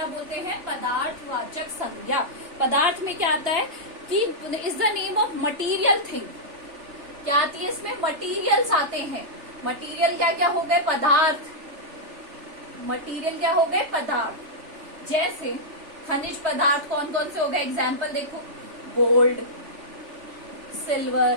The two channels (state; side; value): late; left; 3.4 ms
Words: बोलते हैं? पदार्थवाचक संज्ञा। पदार्थ में क्या आता है कि is the name of material thing. क्या आती है इसमें? मटीरियल्स आते हैं। मटीरियल क्या क्या हो गए? पदार्थ। मटीरियल क्या हो गए? पदार्थ। जैसे खनिज पदार्थ कौन कौन से हो गए? एग्जाम्पल देखो, gold,